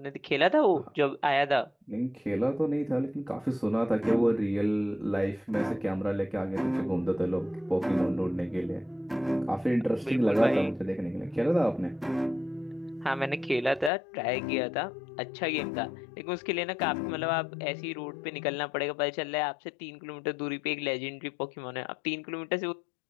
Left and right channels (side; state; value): right; drops out; at 13.9 s